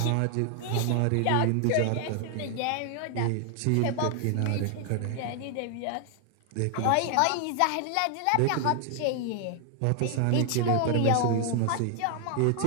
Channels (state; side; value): different; both; correlation 0.00